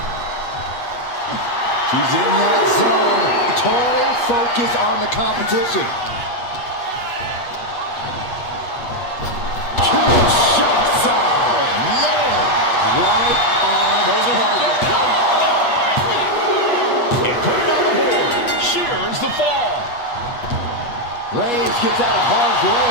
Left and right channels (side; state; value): right; late; 8.3 ms